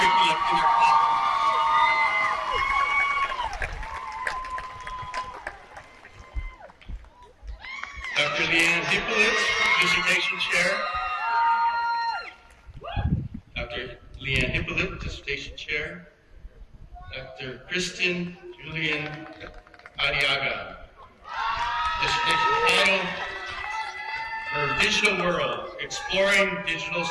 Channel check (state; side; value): identical; both; correlation 1.00